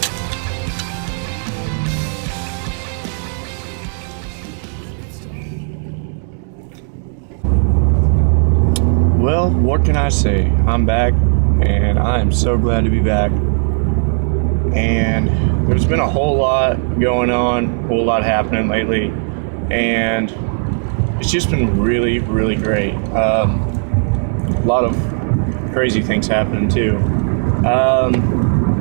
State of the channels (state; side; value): silent; left; 55 dB below the other